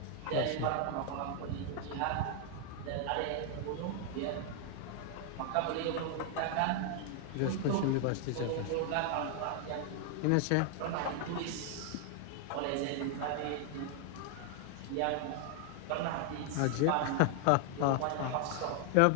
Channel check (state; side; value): different; both; correlation 0.00